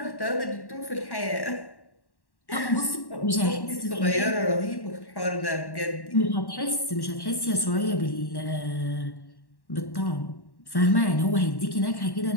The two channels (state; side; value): late; right; 1.1 ms